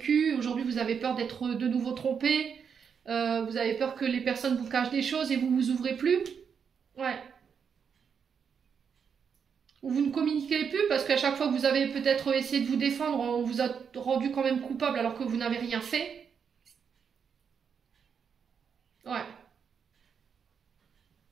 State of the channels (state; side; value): quieter; left; 6.8 dB